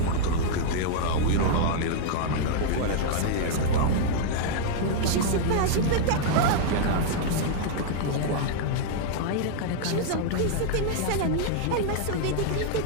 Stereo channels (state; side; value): different; both; correlation -0.01